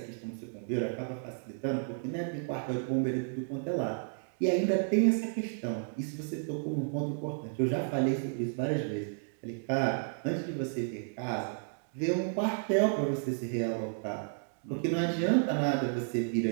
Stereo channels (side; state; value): left; silent; digital silence